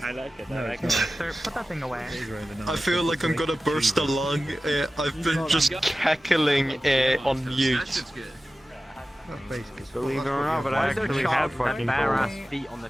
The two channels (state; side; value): normal; both; correlation 0.95